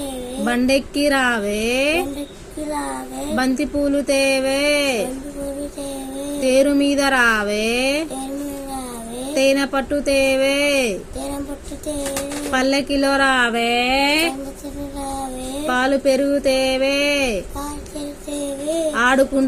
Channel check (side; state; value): both; identical; correlation 1.00